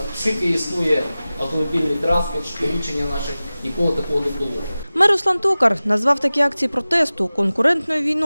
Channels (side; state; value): both; inverted; correlation -0.97